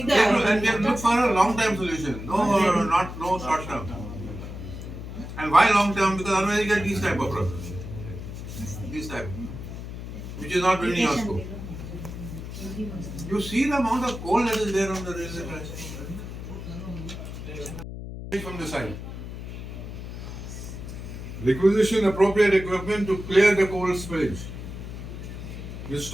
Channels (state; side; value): noise; left; hum, 9 dB below the sound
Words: to, and we have to the look for a long-term solution. No short-term. And why long-term? Because otherwise you get these type of problems. This type, which is not within your scope. You see the amount of coal that is there on the railway tracks from the side. Requisition appropriate equipment to clear the coal spillage.